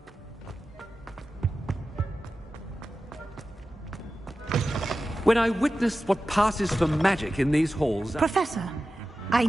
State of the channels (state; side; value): normal; both; correlation 0.93